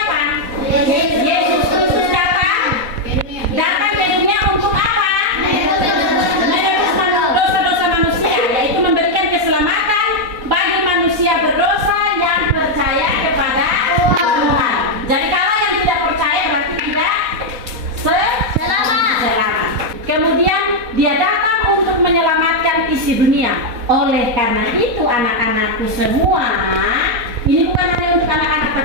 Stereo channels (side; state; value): left; late; 4.1 ms